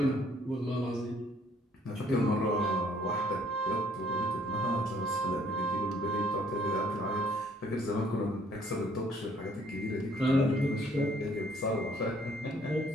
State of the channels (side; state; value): both; normal; correlation 0.62